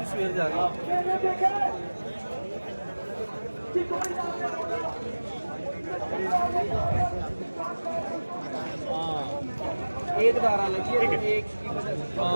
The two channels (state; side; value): inverted; both; correlation -1.00